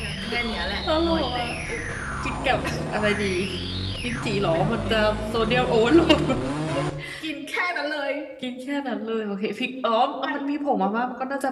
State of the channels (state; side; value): identical; both; correlation 1.00